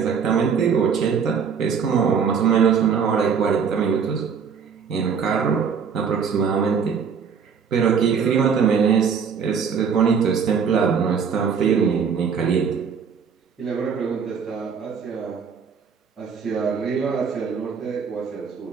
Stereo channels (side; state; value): left; quieter; 6.5 dB